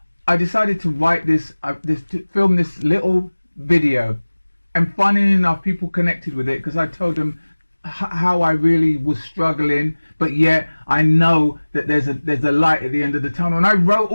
I decided to write to film this little video. And funny enough, people connected with it because I told them how I really was struggling, but yet I know that there's a light at the end of the tunnel. And I wrote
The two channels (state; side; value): inverted; both; correlation -1.00